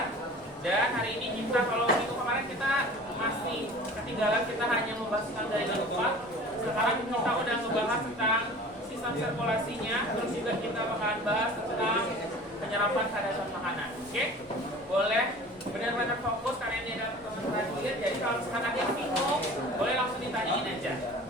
Dan hari ini kita, kalau minggu kemarin kita masih ketinggalan, kita hanya membahas tentang dari alfa. Sekarang kita udah ngebahas tentang sistem sirkulasinya. Terus juga kita bakalan bahas tentang penyerapan kadar makanan. Oke? Boleh benar-benar fokus karena ini adalah pertemuan terakhir. Jadi kalau misalkan ada yang bingung, boleh langsung ditanyain aja.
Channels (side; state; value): both; normal; correlation 0.42